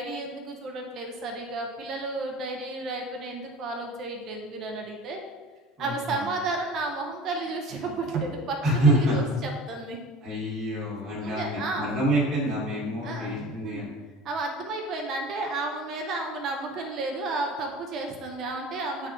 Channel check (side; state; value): both; normal; correlation 0.39